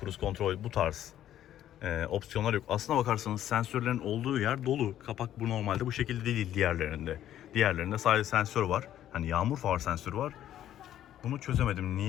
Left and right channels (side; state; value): right; quieter; 11.7 dB